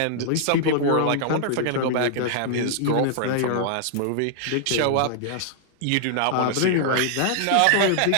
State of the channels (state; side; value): different; both; correlation -0.01